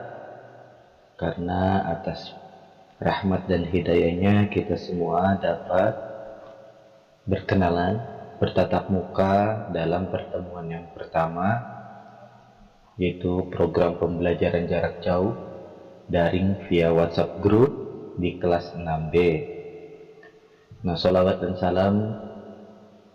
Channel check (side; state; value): both; identical; correlation 1.00